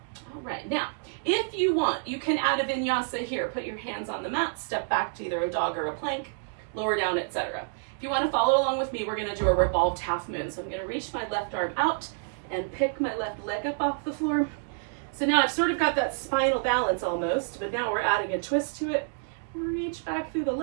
All right, now, if you want, you can add a vinyasa here. Put your hands on the mat, step back to either a dog or a plank, lower down, etc. If you want to follow along with me, we're going to do a revolved half moon. So I'm going to reach my left arm out and pick my left leg up off the floor. So now I've sort of got that spinal balance almost, but now we're adding a twist to it. Reach back through the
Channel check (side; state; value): left; silent; digital silence